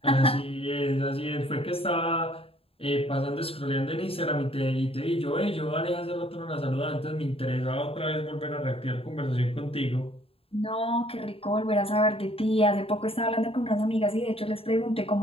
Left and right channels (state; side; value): late; right; 0.27 ms